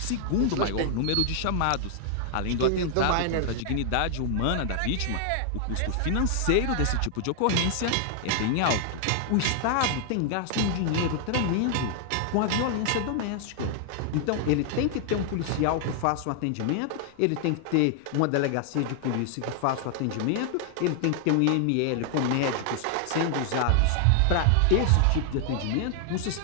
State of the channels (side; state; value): both; different; correlation 0.00